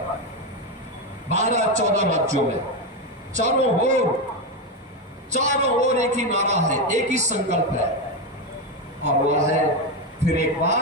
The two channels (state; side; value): normal; both; correlation 0.10